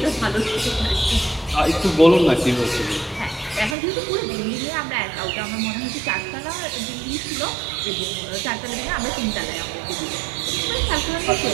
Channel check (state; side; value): drops out; left; at 3.8 s